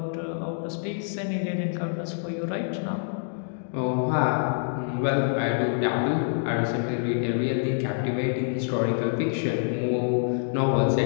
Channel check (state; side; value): silent; right; digital silence